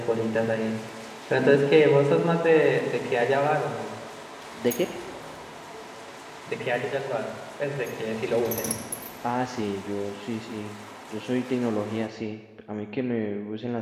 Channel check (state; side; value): identical; both; correlation 1.00